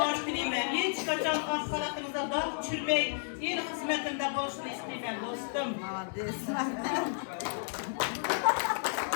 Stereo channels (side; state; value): right; silent; digital silence